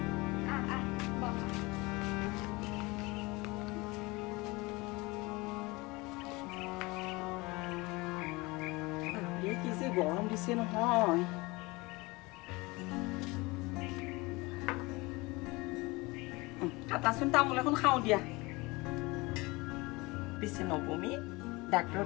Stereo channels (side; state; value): right; quieter; 23.8 dB